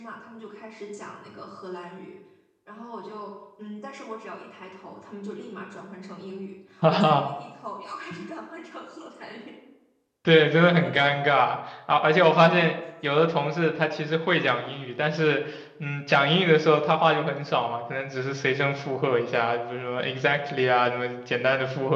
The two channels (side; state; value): both; identical; correlation 1.00